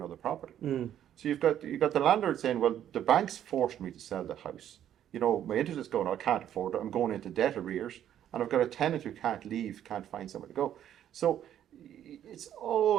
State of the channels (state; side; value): quieter; left; 10.7 dB